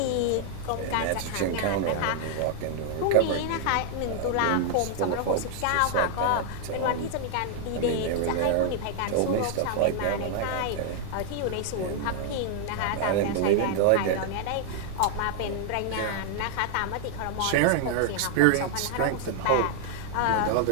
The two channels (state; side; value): different; both; correlation 0.00